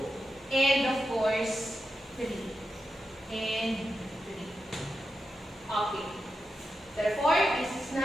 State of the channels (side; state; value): both; normal; correlation 0.88